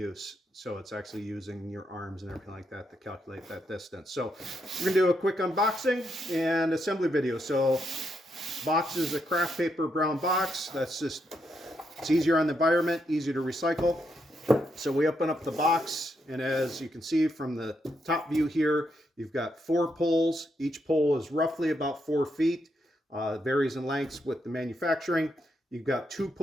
So it's actually using your arms and everything like that to calculate that distance. So we're going to do a quick unboxing and assembly video. So box is a craft paper brown box. It's easier on the environment, easier to recycle. So we open up the box, and as you can see from the top view here, you've got 4 poles. Each pole is roughly about 4 feet. Varies in lengths with the manufacturing. You've got 2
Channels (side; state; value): both; normal; correlation 0.80